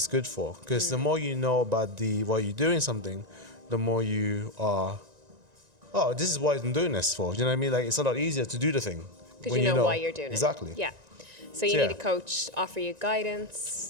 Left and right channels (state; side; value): late; left; 1.9 ms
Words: good for? Because the more you know about why you're doing something, the more you are. Oh, this is what I'm doing this for. You know what I mean? Like, it's a lot easier to do the thing Because when you know why you're doing exactly. it. Yeah. So you Yeah. need a coach to offer you